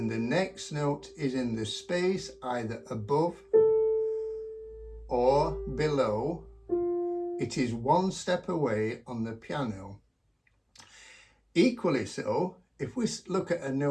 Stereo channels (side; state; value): both; identical; correlation 1.00